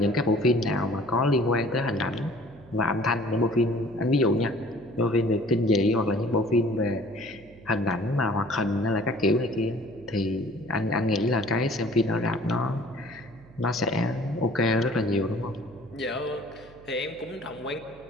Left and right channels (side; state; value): right; noise; hum, 23 dB below the sound